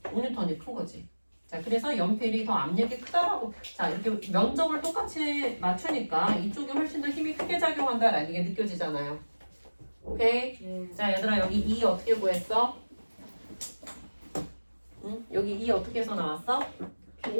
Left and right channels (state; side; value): inverted; both; correlation -1.00